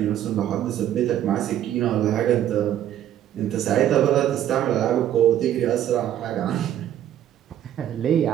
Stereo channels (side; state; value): left; quieter; 11.3 dB